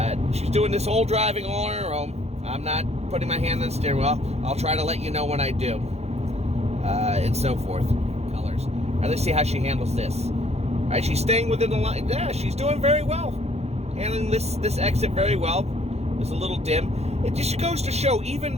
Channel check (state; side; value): late; left; 0.31 ms